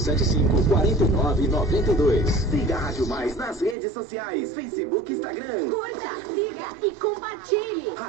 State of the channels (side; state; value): left; drops out; at 3.8 s